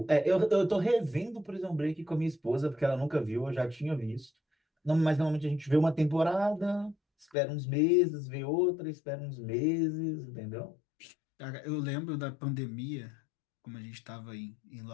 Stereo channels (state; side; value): drops out; right; at 7.2 s